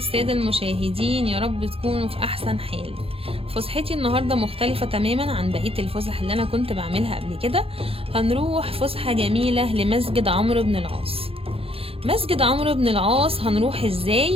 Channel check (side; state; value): left; late; 0.27 ms